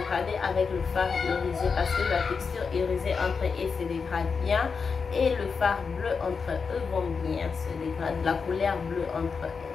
avec le fard irisé. Parce que la texture irisée entre eux se dégrade bien. Et le fard bleu entre eux vont bien se dégrader. La couleur bleue entre eux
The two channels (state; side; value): quieter; right; 5.4 dB